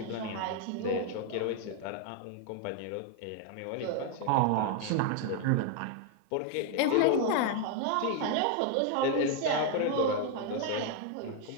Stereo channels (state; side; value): different; both; correlation 0.00